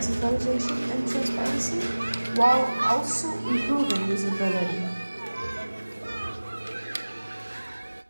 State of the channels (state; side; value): inverted; both; correlation -1.00